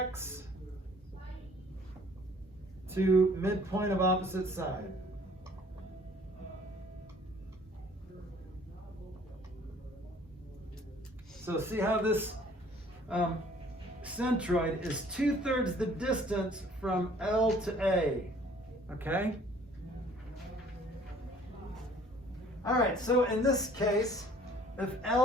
to midpoint of opposite side. So see how this centroid is 2/3 the distance from L to A, okay? All right, so in this case, if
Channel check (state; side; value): normal; both; correlation 0.55